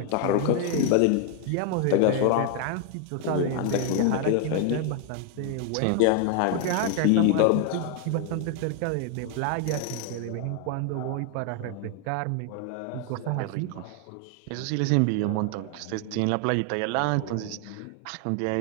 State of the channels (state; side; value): different; both; correlation 0.00